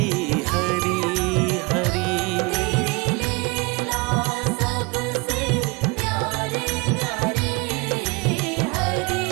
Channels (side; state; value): left; quieter; 27.3 dB